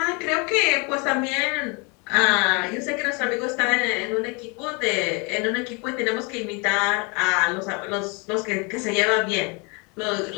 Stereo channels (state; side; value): quieter; right; 31.1 dB